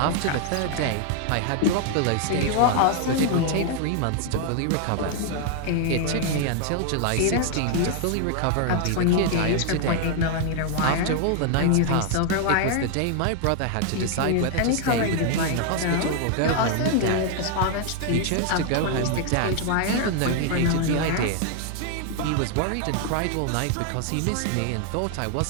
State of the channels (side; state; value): both; different; correlation 0.00